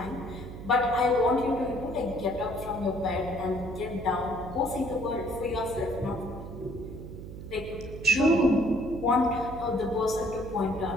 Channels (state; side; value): noise; right; hum, 11 dB below the sound